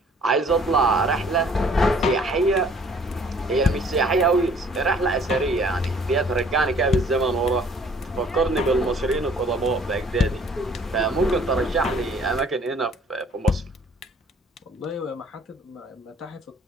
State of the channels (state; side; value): normal; both; correlation 0.57